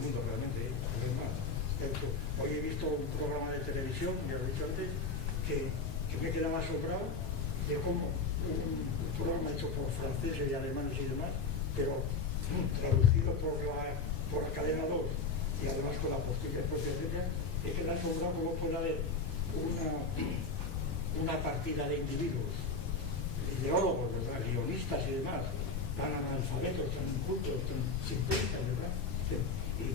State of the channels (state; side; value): quieter; right; 4.2 dB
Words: realmente, además, hoy he visto un programa de televisión, ya lo he dicho antes, que me quedaba asombrado, de como un programa hecho por franceses y alemanes y demás, pero traducido por la cadena 2 y además con la postilla propia de ella, es que me ha asombrado cómo puede haber una partida de individuos, ideólogos, ¿verdad? Guionistas y demás, tan analfabetos, tan incultos, tan simplistas, ¿verdad?